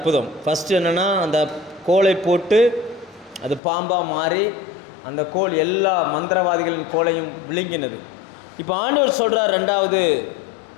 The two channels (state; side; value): drops out; right; at 3.6 s